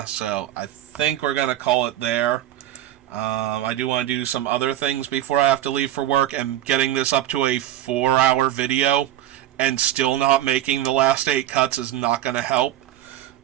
so I think we're going to call it there. I do want to do some other things before I have to leave for work, and getting this up to a 4-hour video and still not making the last 8 cuts is not going to help.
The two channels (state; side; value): quieter; left; 13.2 dB